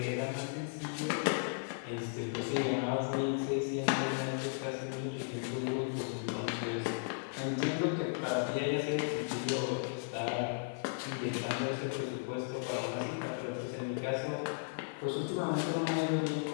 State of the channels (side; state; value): right; silent; 54 dB below the other